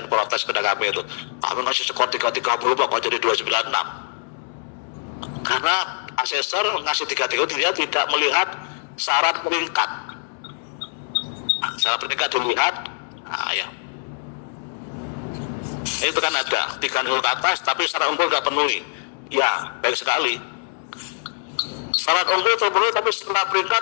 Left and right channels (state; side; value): silent; right; 63 dB below the other